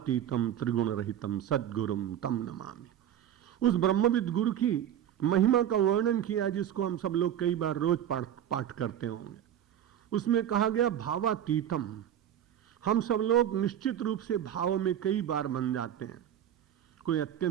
त्रिगुण रहितम सद्गुरुम तम नमामि। उस ब्रह्मविद गुरु की महिमा का वर्णन किया, जिसको हम सब लोग कई बार रोज पाठ करते होंगे। उसमें कहा गया भावातीतम। हम सब लोग निश्चित रूप से भाव में कई बार बन जाते हैं। कोई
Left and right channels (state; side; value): quieter; left; 10.5 dB